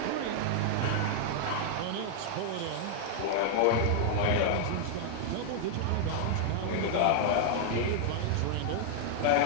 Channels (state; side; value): different; both; correlation -0.01